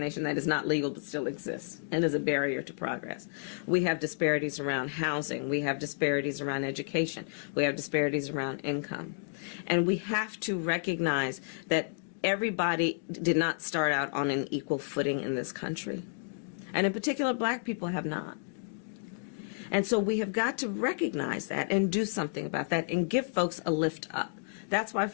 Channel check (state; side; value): silent; right; digital silence